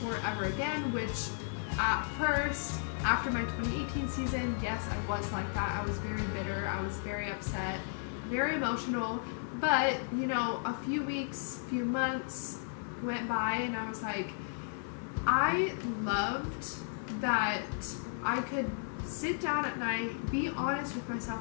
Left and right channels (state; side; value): silent; right; 55 dB below the other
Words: ever again, which at first, after my 2018 season, yes, I was like that. I was very bitter, I was very upset, very emotional, but you know, a few weeks, few months went by and I was like, I loved that I could sit down at night, be honest with